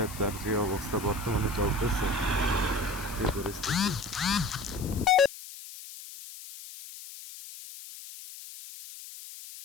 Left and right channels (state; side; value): noise; left; hiss, 14 dB below the sound